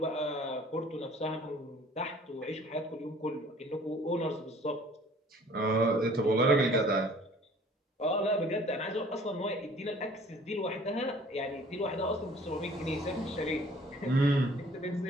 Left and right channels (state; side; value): normal; both; correlation 0.53